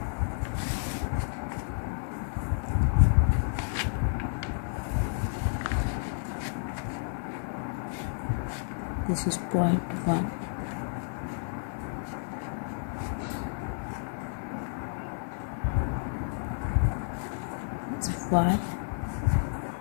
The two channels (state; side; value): silent; right; 57 dB below the other